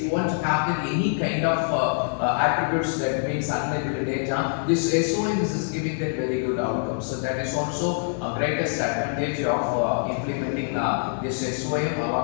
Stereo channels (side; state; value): right; silent; digital silence